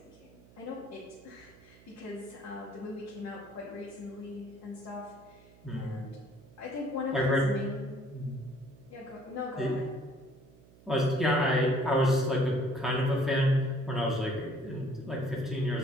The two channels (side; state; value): right; noise; hum, 24 dB below the sound